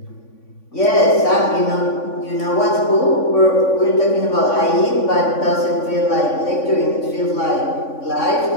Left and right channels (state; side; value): late; right; 3.5 ms